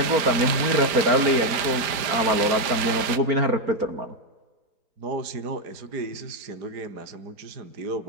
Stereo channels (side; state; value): left; late; 4.9 ms